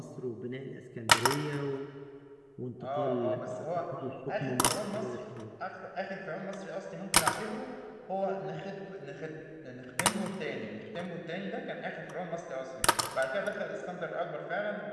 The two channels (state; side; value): identical; both; correlation 1.00